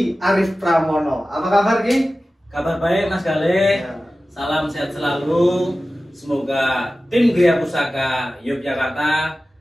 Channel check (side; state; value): both; normal; correlation 0.95